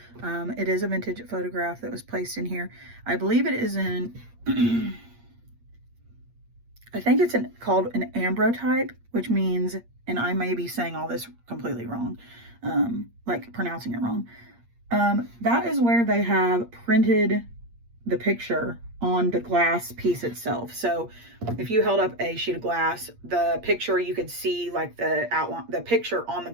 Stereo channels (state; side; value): late; left; 8.5 ms